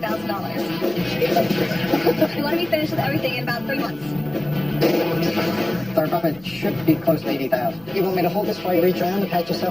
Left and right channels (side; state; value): right; noise; hum, 24 dB below the sound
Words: We want to be finished with everything in about 3 months. Our profit should be close to $80,000. You want me to hold this while you reach around and pat